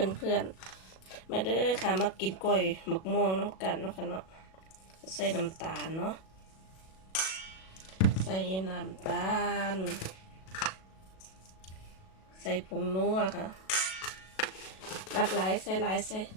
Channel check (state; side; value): late; right; 37 ms